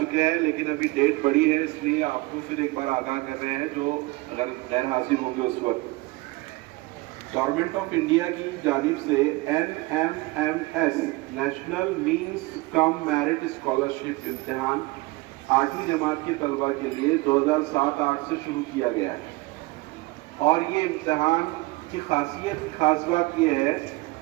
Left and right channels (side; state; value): left; quieter; 22.4 dB